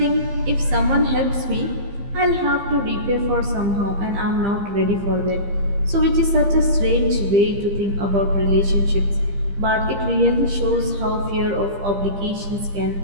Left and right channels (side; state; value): left; late; 15 ms